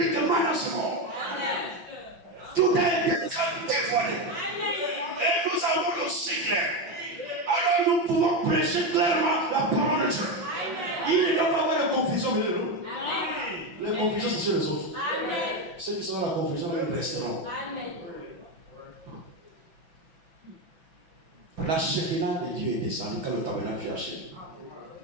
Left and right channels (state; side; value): late; left; 6.0 ms